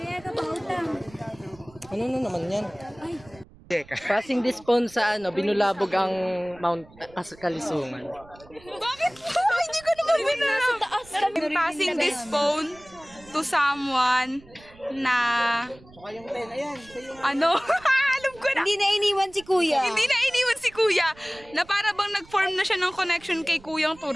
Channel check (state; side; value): noise; right; rumble, 24 dB below the sound